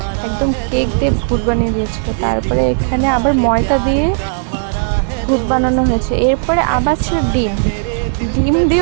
একদম কেক দিয়ে ভূত বানিয়ে দিয়েছিল। তারপরে এখানে আবার ময়দা দিয়ে ভূত বানানো হয়েছে। এরপরে আবার ছিল ডিম, ডিম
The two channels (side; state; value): left; silent; digital silence